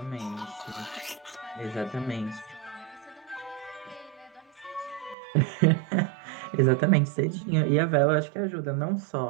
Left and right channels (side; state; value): left; drops out; at 5.2 s